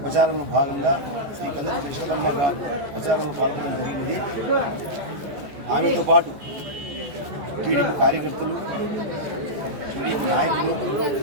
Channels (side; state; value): left; late; 14 ms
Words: ప్రచారంలో భాగంగా శ్రీ కందుకుంట యశోదమ్మ గారు ప్రచారంలో పాల్గొనడం జరిగినది. ఆమెతో పాటు టీడీపీ కార్యకర్తలు, టీడీపీ నాయకులు